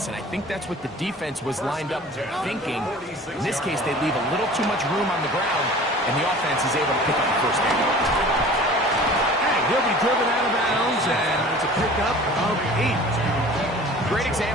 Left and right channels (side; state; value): both; normal; correlation 0.44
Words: and I think that's what the defense was lined up thinking. In this case, they leave a little too much room on the ground, and the offense is able to pick up the first down. And he'll be driven out of bounds, and it's a pickup of 8. Great